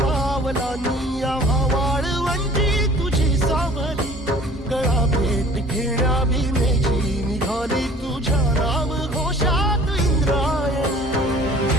निया वाळवंटी तुझी सावली गळा भेट घेण्या भीमेची निघाली तुझ्या राम घोषात इंद्रायणी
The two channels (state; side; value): normal; both; correlation 0.49